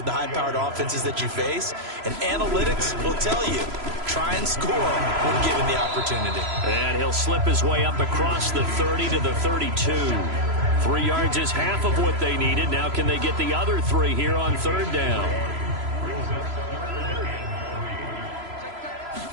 the high-powered offenses that you face. And analytics will tell you, try and score when given the opportunity. And he'll slip his way up across the 30 to the 32. 3 yards is half of what they needed. Now can they get the other 3 here on third down?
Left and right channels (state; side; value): late; left; 3.0 ms